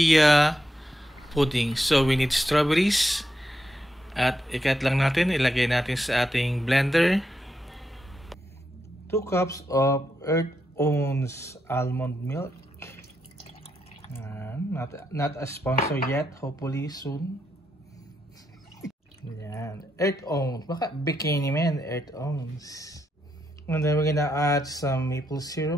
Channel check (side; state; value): both; normal; correlation 0.82